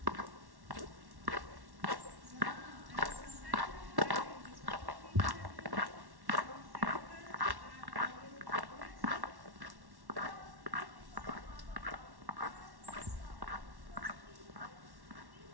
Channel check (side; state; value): left; late; 1.1 ms